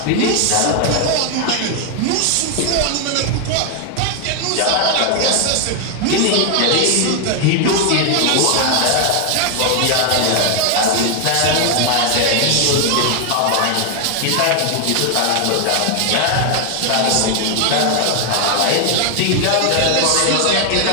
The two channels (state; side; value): different; both; correlation 0.00